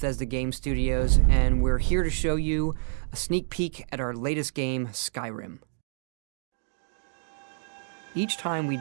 Game Studios, and we're here to show you a sneak peek at our latest game, Skyrim. Each time we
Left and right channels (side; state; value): left; silent; 59 dB below the other